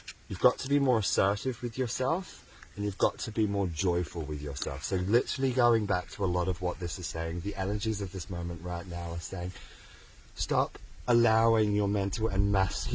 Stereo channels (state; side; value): identical; both; correlation 1.00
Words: You've got to be more assertive with yourself, and you've got to be more joyful with yourself. So literally going back to a lot of what this is saying, the energies of this moment right now are saying, stop allowing your mental and